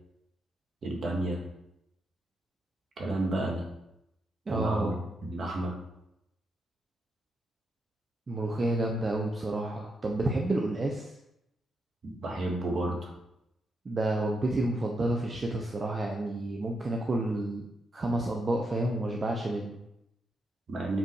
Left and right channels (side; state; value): both; normal; correlation 0.82